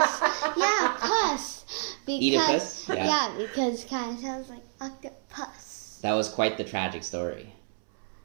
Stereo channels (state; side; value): silent; left; 59 dB below the other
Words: Oedipus? Yeah, because it kind of sounds like octopus. That was quite the tragic story.